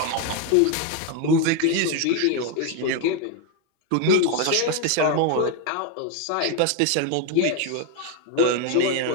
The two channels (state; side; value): different; both; correlation 0.01